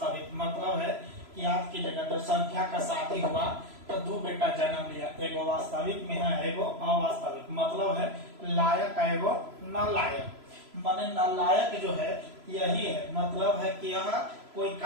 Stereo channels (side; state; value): left; late; 3.0 ms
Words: मतलब है कि याद कीजिएगा, तो संख्या का शादी हुआ तो दो बेटा जन्म लिया, एगो वास्तविक में है एगो अवास्तविक। मतलब है लायक एगो नालायक। माने नालायक जो है यही है, मतलब है कि यह कोई